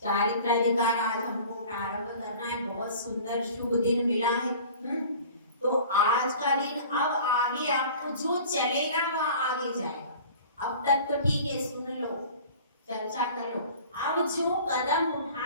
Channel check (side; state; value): both; inverted; correlation -0.44